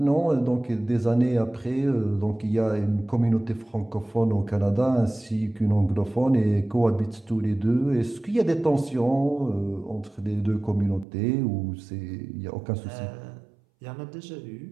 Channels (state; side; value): drops out; left; at 11.1 s